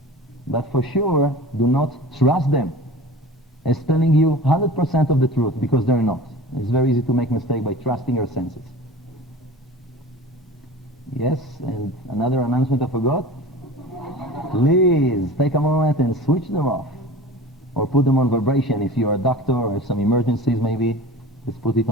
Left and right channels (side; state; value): both; normal; correlation 0.37